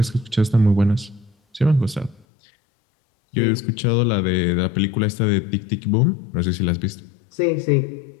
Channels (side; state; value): right; drops out; at 2.2 s